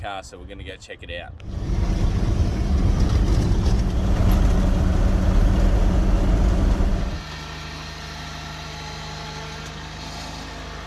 so we're going to go check it out.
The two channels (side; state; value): both; identical; correlation 1.00